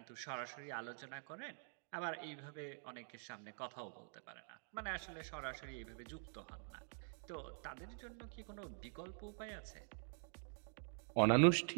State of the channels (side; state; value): left; silent; digital silence